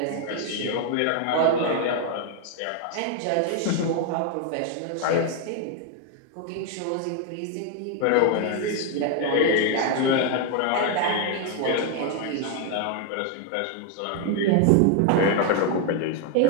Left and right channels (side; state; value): both; different; correlation 0.01